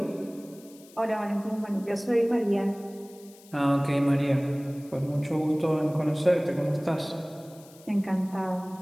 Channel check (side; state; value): left; noise; hiss, 24 dB below the sound